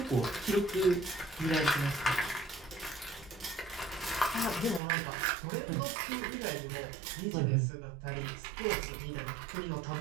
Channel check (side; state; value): left; drops out; at 4.8 s